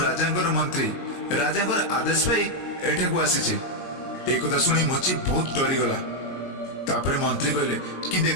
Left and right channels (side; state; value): right; late; 22 ms